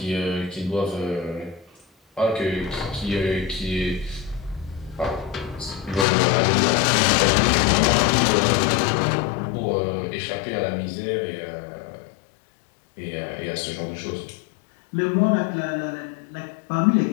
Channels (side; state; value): right; drops out; at 6.1 s